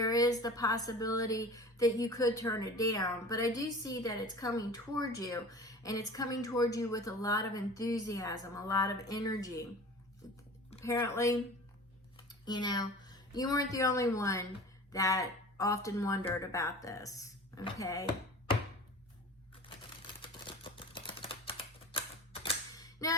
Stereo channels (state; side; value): normal; both; correlation 0.38